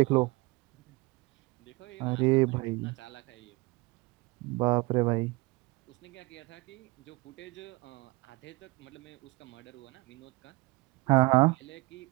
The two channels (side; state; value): left; quieter; 24.1 dB